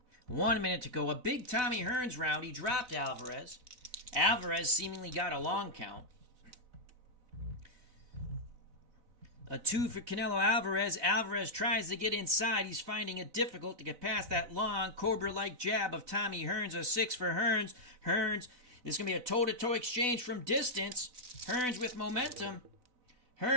1 minute to go. A big Tommy Hearns round. He dropped Alvarez. Alvarez seemingly got a long count. A 2 for Canelo Alvarez. Alvarez tries to get inside. He's finding it difficult to get past that long Cobra-like jab of Tommy Hearns. A 6 for Hearns. Hearns, this is going to be a toe-to-toe exchange from distance. Hearns with momentum.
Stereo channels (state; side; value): late; left; 4.0 ms